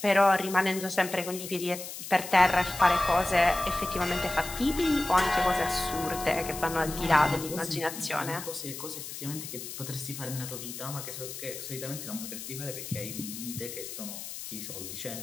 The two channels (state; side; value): noise; left; hiss, 9 dB below the sound